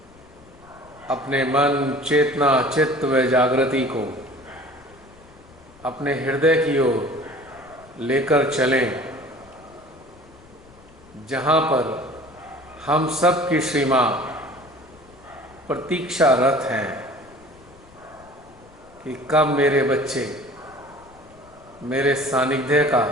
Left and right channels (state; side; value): noise; left; rumble, 25 dB below the sound